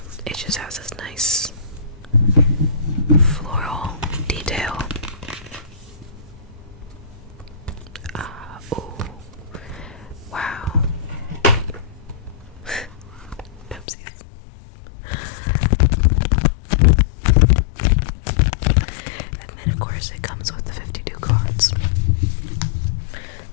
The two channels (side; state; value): right; drops out; at 13.9 s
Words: It just has this nice floral detail. Ooh. Wow. Oopsies. And then, of course, it comes with the 52 cards.